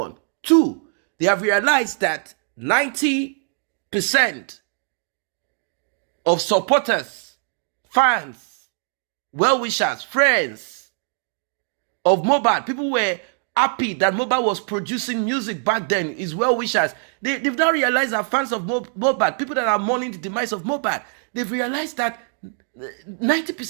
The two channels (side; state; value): left; silent; 61 dB below the other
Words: Two, they have realized that 90% of supporters, fans, well-wishers, friends of Mohbad, people were happy that Mohbad was producing music back then, his well-wishers. They've now realized that fans of Mohbad, people that are mourning the demise of Mohbad, they've realized that